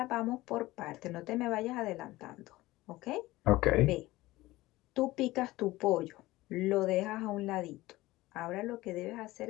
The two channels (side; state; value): right; quieter; 18.4 dB